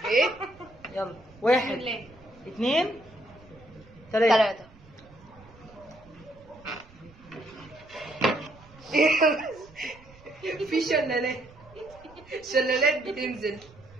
ايه؟ يلا بسم 1 الله. 2 3. 3. في شلالات بتنزل.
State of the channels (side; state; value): right; noise; rumble, 24 dB below the sound